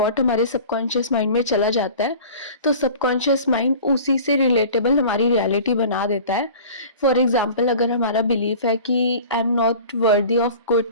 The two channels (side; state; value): both; inverted; correlation -0.42